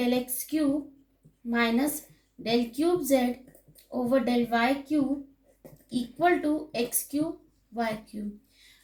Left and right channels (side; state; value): both; identical; correlation 1.00